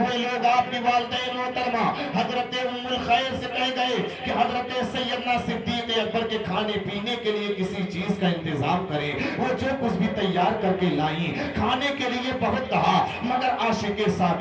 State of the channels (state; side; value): identical; both; correlation 1.00